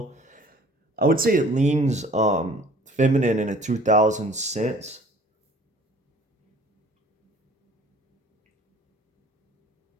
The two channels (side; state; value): both; normal; correlation 0.51